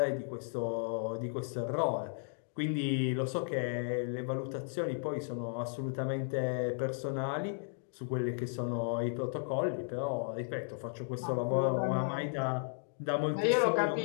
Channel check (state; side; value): silent; right; digital silence